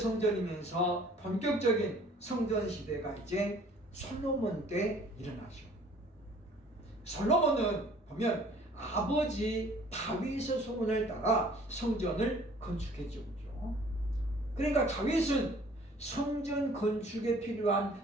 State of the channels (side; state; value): both; normal; correlation 0.54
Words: 본격적인 성전 시대가 이제 솔로몬 때 일어나죠. 솔로몬은 보면 아버지 다윗의 소원을 따라 성전을 건축했죠. 그러니까 다윗은 성전 건축에 필요한